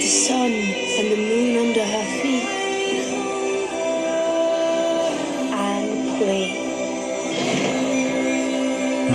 sun and the moon under her feet. Anne Lee.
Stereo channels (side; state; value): both; identical; correlation 1.00